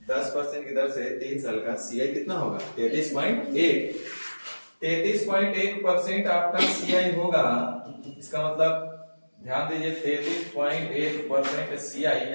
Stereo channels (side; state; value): both; inverted; correlation -1.00